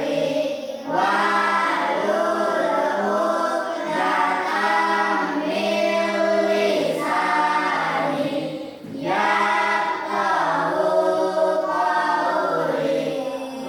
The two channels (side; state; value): both; identical; correlation 1.00